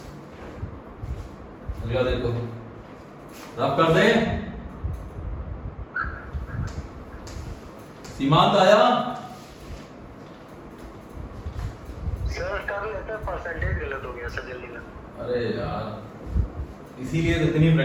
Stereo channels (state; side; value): identical; both; correlation 1.00